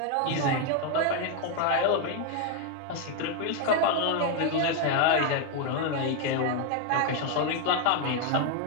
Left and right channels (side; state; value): both; different; correlation 0.01